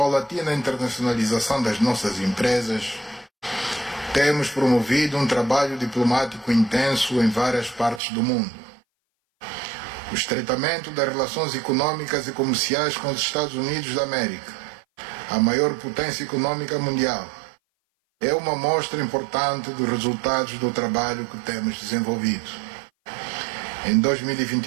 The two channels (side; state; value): left; drops out; at 8.0 s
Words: internacionalização das nossas empresas, temos promovido um trabalho diplomático intenso em várias partes do mundo. O estreitamento das relações econômicas e comerciais com os Estados Unidos da América, a maior potência econômica mundial, é uma mostra importante dos resultados do trabalho que temos desenvolvido. Em